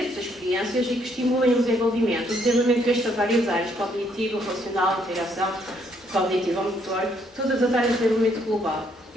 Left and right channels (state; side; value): normal; both; correlation 0.70